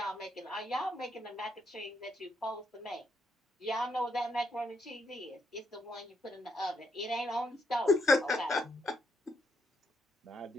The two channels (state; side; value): normal; both; correlation 0.77